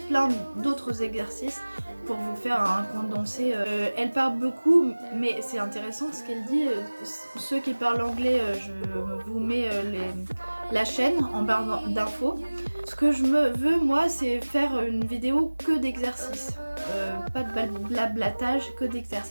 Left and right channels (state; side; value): inverted; both; correlation -1.00